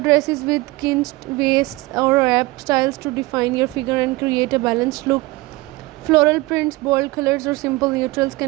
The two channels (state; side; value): quieter; left; 21.5 dB